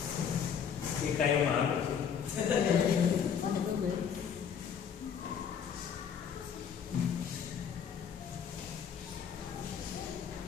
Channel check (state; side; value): quieter; right; 7.5 dB